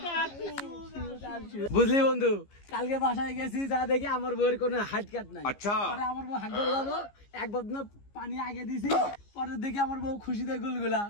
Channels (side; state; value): right; late; 15 ms